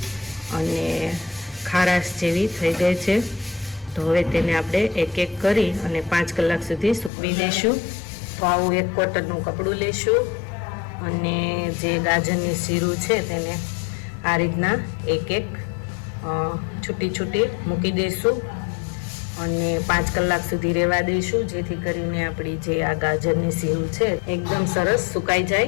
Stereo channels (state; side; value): drops out; right; at 7.1 s